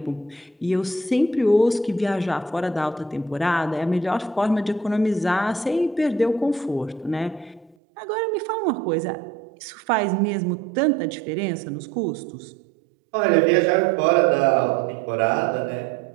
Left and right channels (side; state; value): left; drops out; at 7.8 s